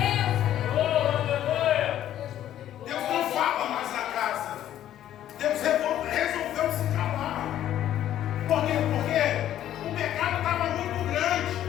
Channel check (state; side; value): quieter; right; 11.8 dB